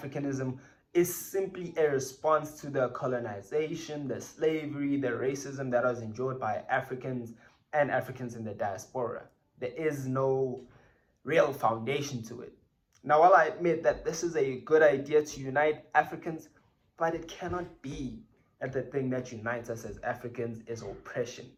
is simply a response to the colonization, the slavery, the racism that was endured by Africans and Africans in the diaspora. There is no real foundation to it. Now, while I admit that this is a good idea to unite Africans, but it cannot be that the thing that unites us as Africans is oppression.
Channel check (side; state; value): both; identical; correlation 1.00